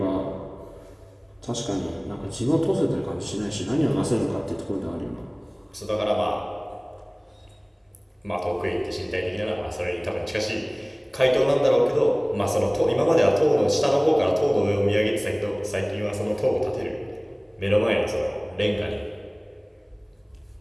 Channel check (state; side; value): identical; both; correlation 1.00